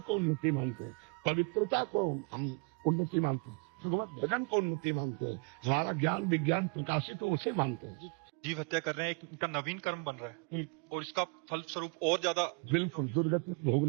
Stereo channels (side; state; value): left; quieter; 33.7 dB